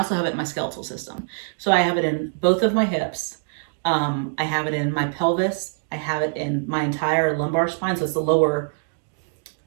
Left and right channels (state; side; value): silent; left; digital silence